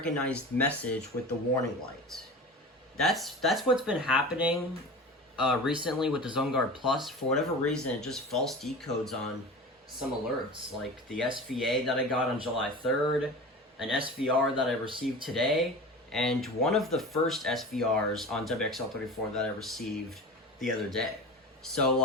message with the warning light. That's what's been happening recently with the Zoneguard Plus. For whatever reason, it just false decodes on some alerts, like the SVA that I got on July 3rd, an SVR that I received today, and one of the first SVRs on WXL34 that I received the other day. So,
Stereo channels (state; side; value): normal; both; correlation 0.33